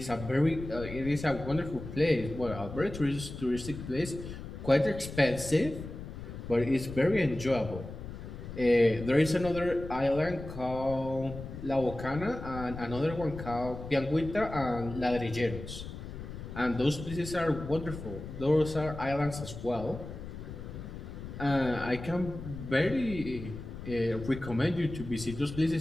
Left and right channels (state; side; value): noise; left; rumble, 10 dB below the sound